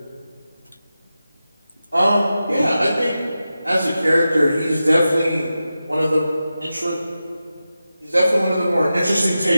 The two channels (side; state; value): both; inverted; correlation -0.92